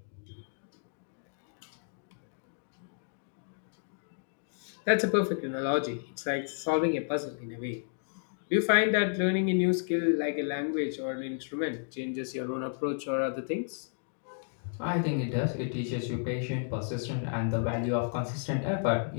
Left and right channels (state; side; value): silent; right; digital silence